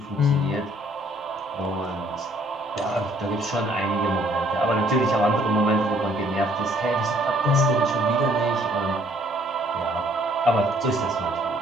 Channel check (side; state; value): both; normal; correlation 0.62